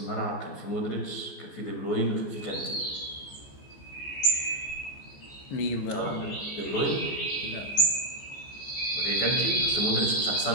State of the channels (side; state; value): right; late; 14 ms